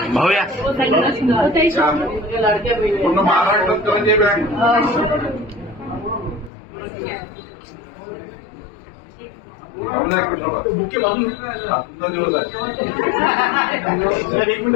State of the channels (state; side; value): drops out; right; at 6.5 s